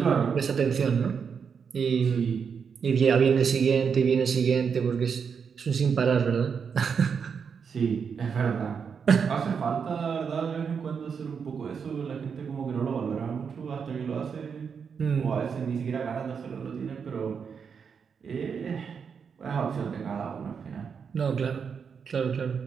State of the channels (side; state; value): left; quieter; 6.4 dB